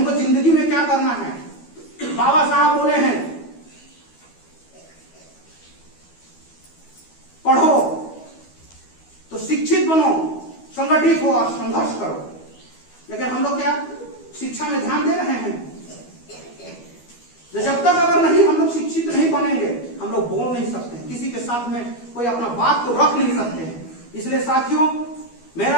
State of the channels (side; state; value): right; late; 12 ms